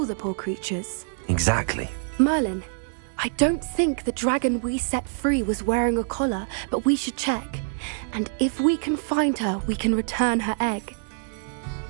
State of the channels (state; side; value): silent; left; digital silence